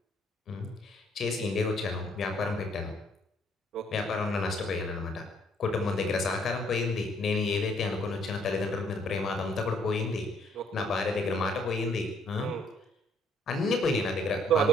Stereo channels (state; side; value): normal; both; correlation 0.65